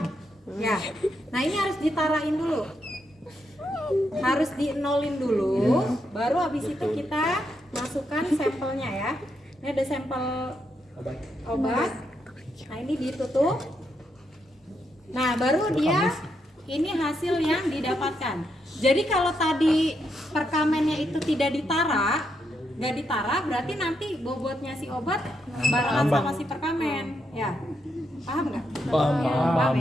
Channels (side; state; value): both; normal; correlation 0.80